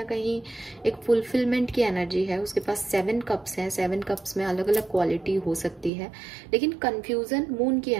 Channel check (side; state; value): left; drops out; at 5.9 s